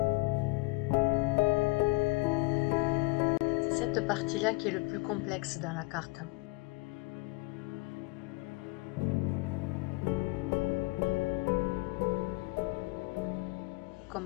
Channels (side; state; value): right; quieter; 25.2 dB